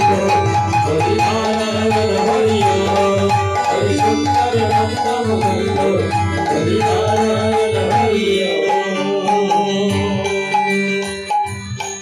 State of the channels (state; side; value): identical; both; correlation 1.00